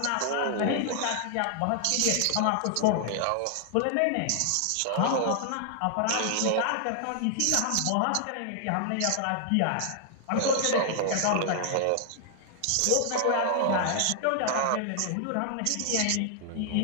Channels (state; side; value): different; both; correlation 0.00